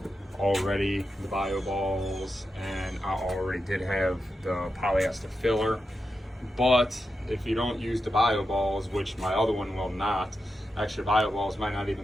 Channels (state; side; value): normal; both; correlation 0.89